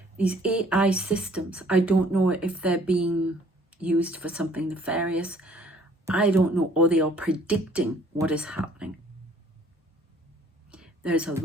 These AI systems, I don't know if they're being used for something nefarious. I don't know, or they are predicting what is happening. There's a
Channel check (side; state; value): both; normal; correlation 0.58